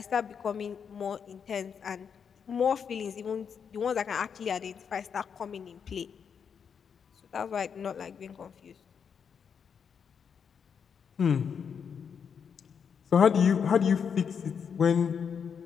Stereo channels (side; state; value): right; quieter; 6.9 dB